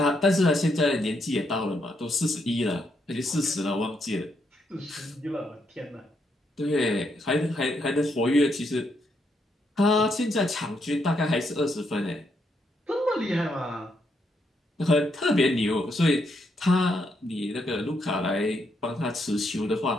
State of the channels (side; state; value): both; normal; correlation 0.77